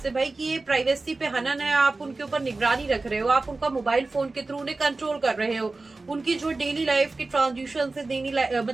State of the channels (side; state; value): left; quieter; 3.5 dB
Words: है भाई कि ये प्राइवेसी पे हनन है। आप उनके ऊपर निगरानी रख रहे हो, आप उनका मोबाइल फोन के थ्रू उन्हें कंट्रोल कर रहे हो, उनकी जो डेली लाइफ की ट्रांजेक्शन से